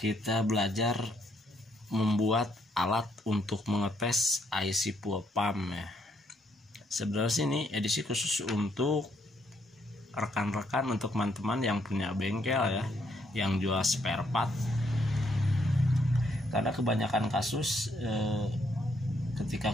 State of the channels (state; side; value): normal; both; correlation 0.73